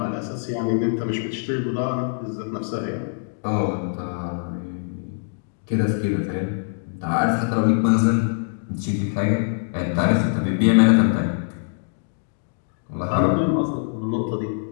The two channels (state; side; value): silent; right; digital silence